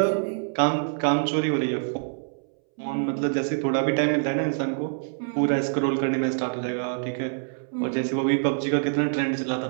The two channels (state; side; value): silent; left; 61 dB below the other